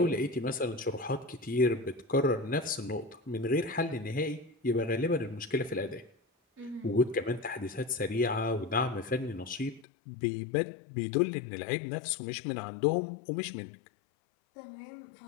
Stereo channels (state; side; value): drops out; right; at 9.9 s